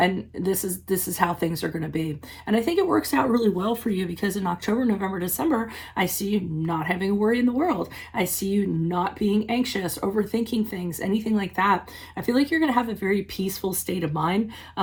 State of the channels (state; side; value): identical; both; correlation 1.00